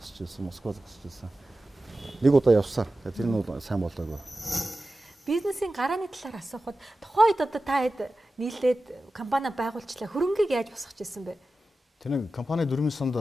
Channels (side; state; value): both; normal; correlation 0.94